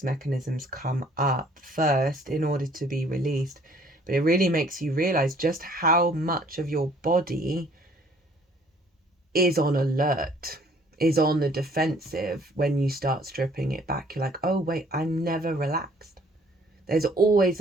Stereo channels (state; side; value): normal; both; correlation 0.59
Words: mechanisms come up first in order to be released. But it really makes you realize just how much of your body is on alert, is on the defensive when you start stripping it back. You're like, oh wait, I'm never relaxed. There's always